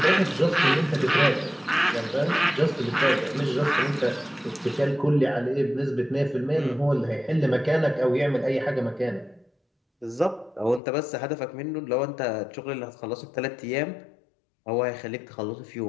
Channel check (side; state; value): right; drops out; at 10.8 s